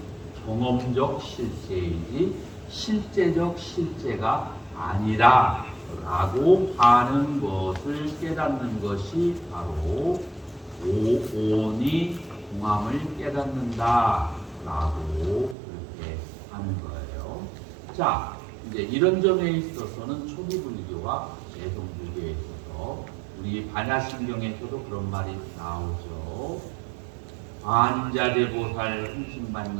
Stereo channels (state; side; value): drops out; left; at 15.6 s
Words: 경험적 실제이지 실제적 실제가 아니라 라고 하는 것을 깨닫는 것이 바로 오온이 공함을 깨닫는다 라고 그렇게 하는 거예요. 자, 이제 이런 점에 있어서는 초기불교와 대성불교에 있어서 우리 반야심경에서도 그런 말이 나오죠. 반자대보살